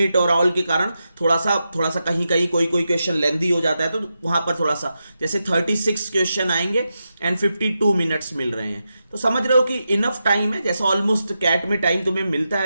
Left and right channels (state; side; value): inverted; both; correlation -0.88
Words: और ऑल के कारण थोड़ा सा कहीं कहीं कोई क्वेश्चन लेंदी हो जाता है, तो वहां पर थोड़ा सा, जैसे 36 क्वेश्चन आएंगे एंड 52 मिनट्स मिल रहे हैं, तो समझ रहे हो कि इनफ टाइम है। जैसा ऑलमोस्ट कैट में टाइम तुम्हें मिलता